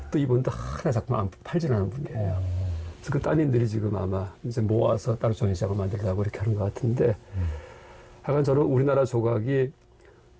또 이분도 하나 작품 안 팔지 않은 분이에요. 그래서 그 따님들이 지금 아마 이제 모아서 따로 전시장을 만들려고 이렇게 하는 것 같은데 하여간 저는 우리나라 조각이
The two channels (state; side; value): identical; both; correlation 1.00